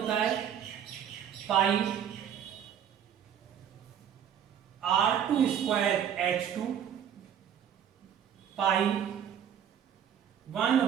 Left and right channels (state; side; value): quieter; left; 9.1 dB